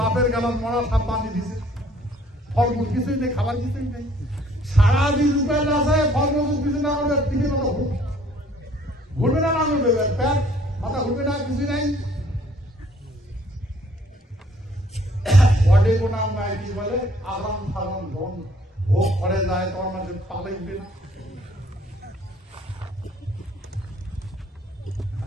গেলাম মরা সাপ বাঁধি দিছে, ফলমূল কিছুই নেই, খাবার কিছুই নেই, সারাদিন উপায় আছে ফলমূল কিছু না করবে টিফিন ঘুরবে না ঘুরবে প্যাট মাথা ঘুরবে না কিছুই নাই। বডি কোনা নাই কি বলে আরাম ফারাম ধন ভোগ করে যায় তোমার মাঝে পালে উঠবে না।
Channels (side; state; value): both; normal; correlation 0.60